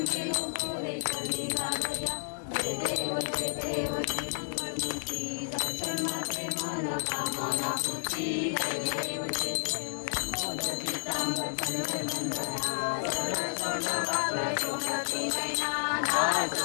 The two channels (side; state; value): right; silent; 55 dB below the other